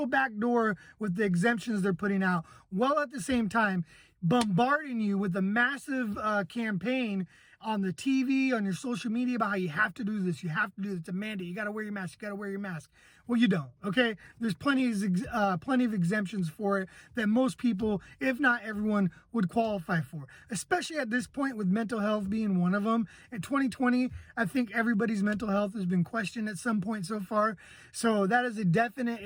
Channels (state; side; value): identical; both; correlation 1.00